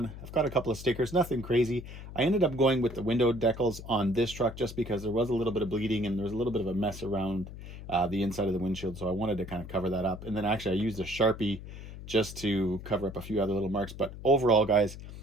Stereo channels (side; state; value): left; noise; hum, 12 dB below the sound